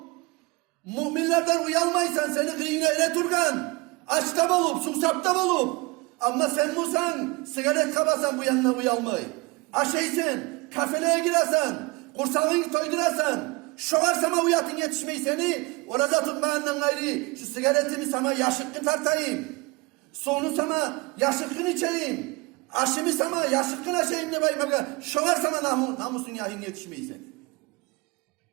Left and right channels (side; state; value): left; quieter; 25.5 dB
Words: müminlerden uyalmaysan, seni kıyına ele turgan, açta bolup, susapta bolup, ama sen musan, sigaret kabasan bu yanına uyalmay. Aşeysen, kafeleye giresen, kursağını toydurasan, şoğar sana uyatın yetişmeyi seni, orada tutmayandan gayri, şu sigaretimi sana yaşıkkı tartayım, sonu sana yaşıkkın içeyim, aşımı sana yaşıkkın aşayım ne bayım, şoğar sana namusun yahin yetişmeyi seni.